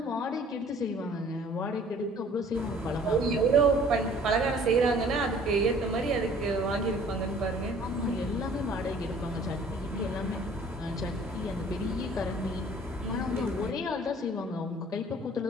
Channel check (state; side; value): normal; both; correlation 0.53